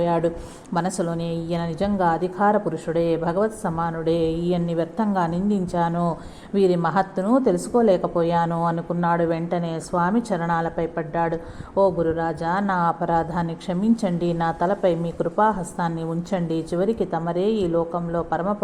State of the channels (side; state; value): both; identical; correlation 1.00